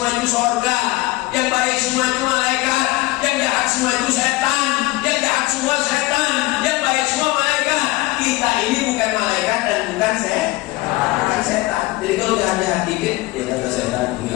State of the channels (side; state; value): right; quieter; 20.3 dB